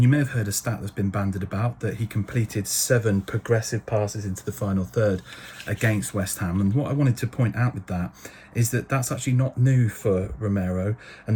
you may have heard a stat that's been bandied about that he completed 7 progressive passes into the final third against West Ham. And what I wanted to point out with that is that that's actually not new for Romero,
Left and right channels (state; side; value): identical; both; correlation 1.00